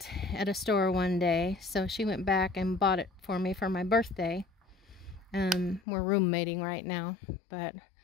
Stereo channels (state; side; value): drops out; right; at 5.8 s